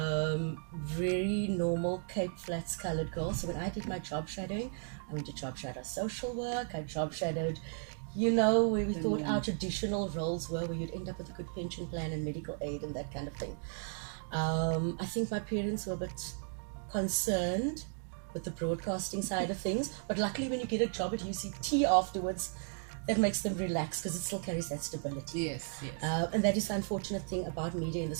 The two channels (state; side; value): silent; left; 54 dB below the other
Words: Very normal Cape Flats coloured girl. So when I did my job shadowing, I went to job shadow social work. I job shadowed, where we thought our traditional roles were, where you'd end up with a good pension plan and medical aid and that kind of thing. I think my parents were a bit concerned with the broadcasting side of things, but luckily when you get a job at UCT afterwards, that makes them relax because it still carries that stability. Yes. And that is the unfortunate thing about media in